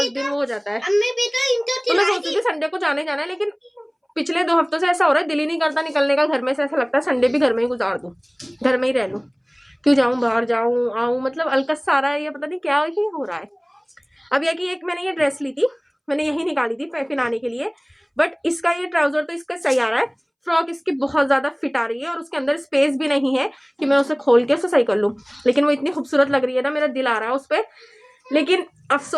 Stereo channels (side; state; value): both; identical; correlation 1.00